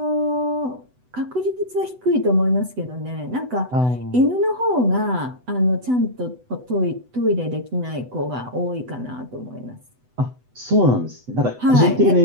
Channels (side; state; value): left; late; 8.0 ms